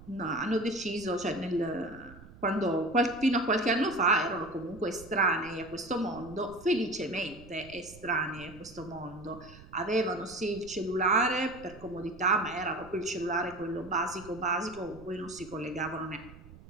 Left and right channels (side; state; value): right; noise; rumble, 19 dB below the sound